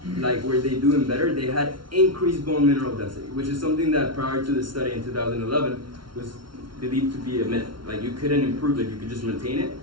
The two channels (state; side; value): late; left; 0.73 ms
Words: like were they doing better, they had increased bone mineral density, which is something that prior to the study in 2011 was believed to be a myth. Like you couldn't improve it, you could just maintain it.